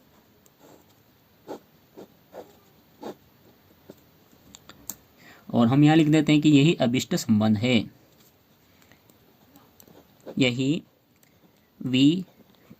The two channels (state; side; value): identical; both; correlation 1.00